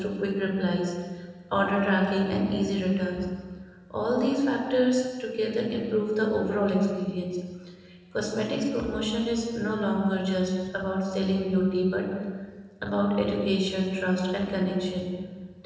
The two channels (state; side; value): identical; both; correlation 1.00